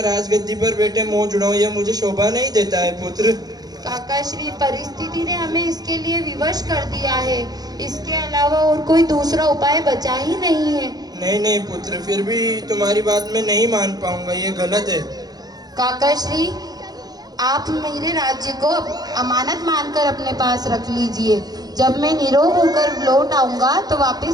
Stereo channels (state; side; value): late; left; 0.19 ms